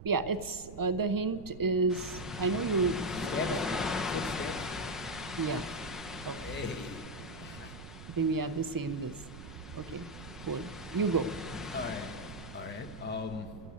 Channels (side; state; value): right; noise; rumble, 13 dB below the sound